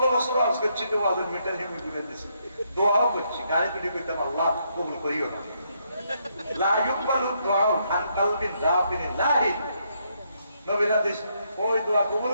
বছর আজ করছি তো ওয়াজের মিটার হেমি করে দিছি দোয়াও করছি গালি তুলি কইতাম আল্লাহ কবুল করিও না লা ইউকবালু দুআ আন কলবিন রাফিন লাহিন নবীর হাদিস ওই দোয়া কবুল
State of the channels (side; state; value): both; inverted; correlation -0.75